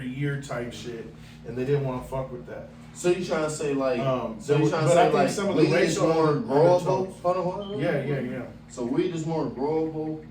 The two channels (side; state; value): both; identical; correlation 1.00